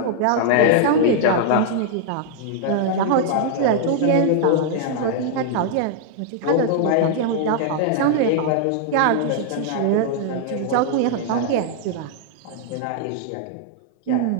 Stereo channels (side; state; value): both; different; correlation -0.01